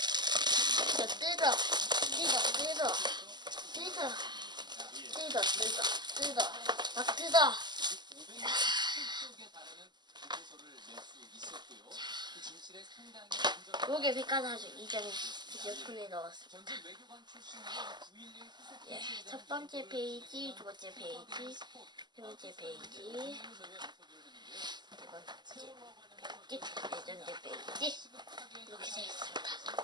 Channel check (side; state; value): left; late; 0.21 ms